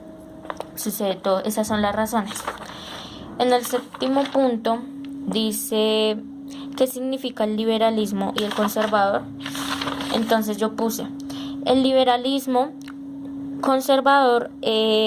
sucede todo. Esas son las razones. En el séptimo punto dice ¿qué significa el liberalismo y el conservador? Entonces yo puse, el liberalismo conservador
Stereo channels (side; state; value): both; identical; correlation 1.00